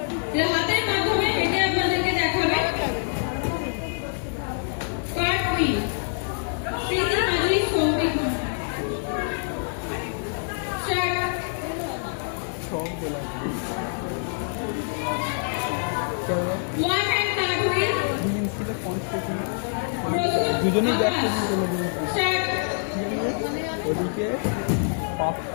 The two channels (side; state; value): right; silent; digital silence